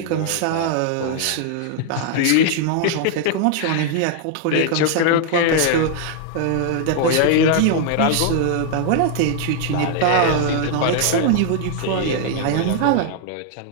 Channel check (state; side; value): different; both; correlation -0.01